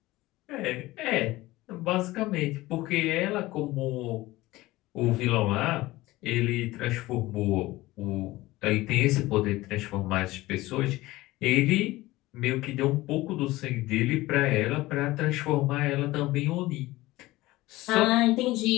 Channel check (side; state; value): right; quieter; 18.6 dB